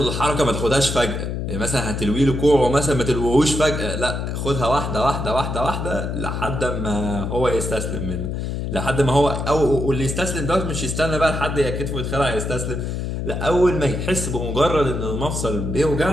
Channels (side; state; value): left; noise; hum, 3 dB below the sound